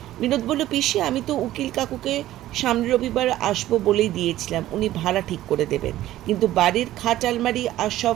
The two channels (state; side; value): quieter; left; 14.4 dB